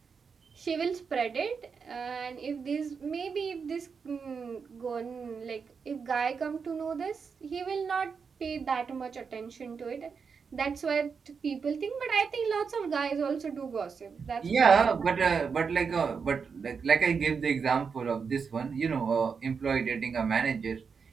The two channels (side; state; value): left; quieter; 5.8 dB